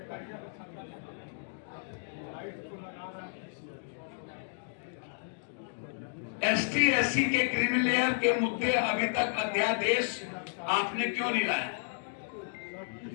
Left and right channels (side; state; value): right; silent; digital silence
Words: एसटी एससी के क्रिमिनल लेयर के मुद्दे अभी तक अध्यादेश आपने क्यों नहीं लाया।